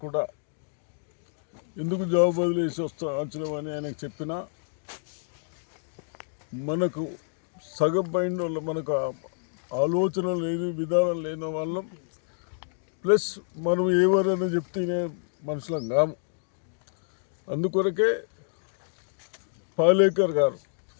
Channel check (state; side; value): silent; right; digital silence